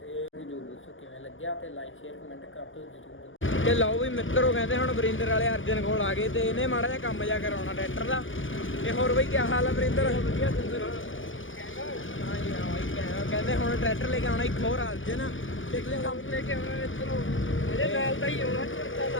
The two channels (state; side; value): late; right; 0.57 ms